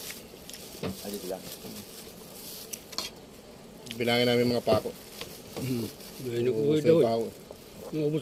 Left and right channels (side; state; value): both; identical; correlation 1.00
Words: Adi sila. Bilangin namin mga pako. May nag-uwi daw eh. Pako. Naubos